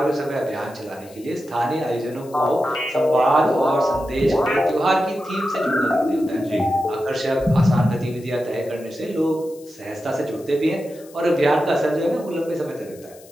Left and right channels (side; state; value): left; noise; hiss, 24 dB below the sound